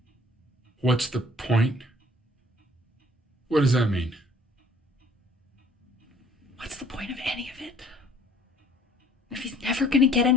What's the point? What does that mean? What's the point of any of it? If he's never gonna get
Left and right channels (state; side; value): normal; both; correlation 0.56